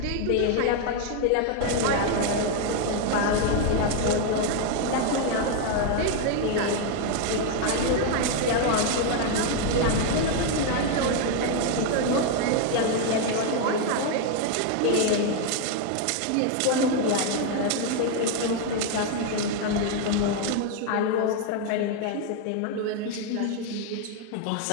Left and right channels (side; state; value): both; different; correlation 0.01